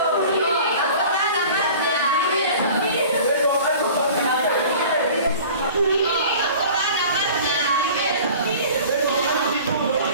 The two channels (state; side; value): inverted; both; correlation -0.43